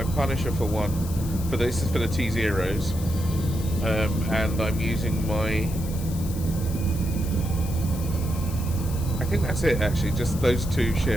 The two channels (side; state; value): left; noise; hiss, 14 dB below the sound